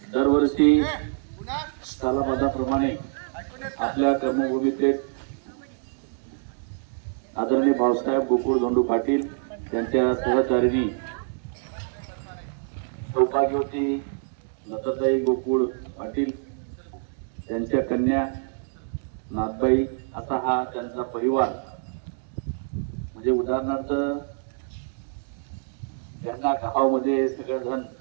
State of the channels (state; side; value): silent; left; digital silence